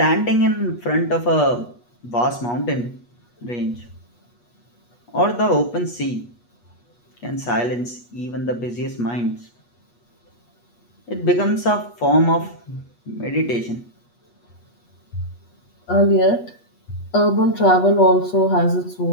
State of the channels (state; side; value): late; right; 8.3 ms